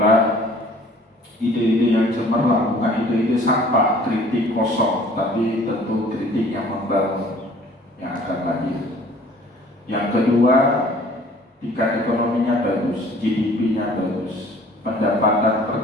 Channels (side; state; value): both; normal; correlation 0.52